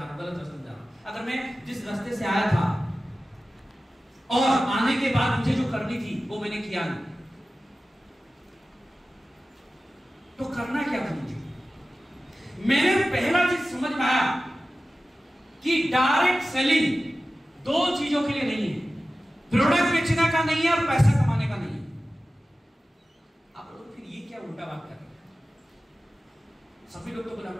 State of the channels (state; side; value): normal; both; correlation 0.95